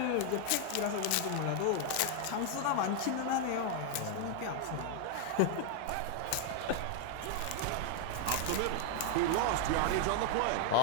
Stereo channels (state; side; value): different; both; correlation 0.00